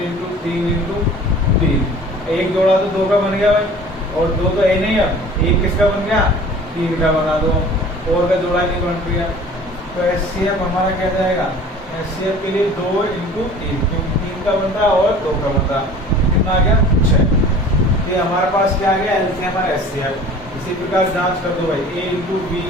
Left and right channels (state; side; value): normal; both; correlation 0.45